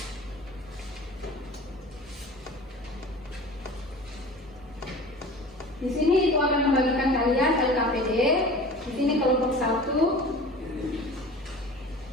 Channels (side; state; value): both; normal; correlation 0.39